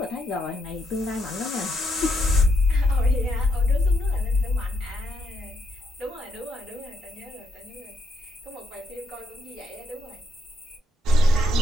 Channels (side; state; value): both; normal; correlation 0.78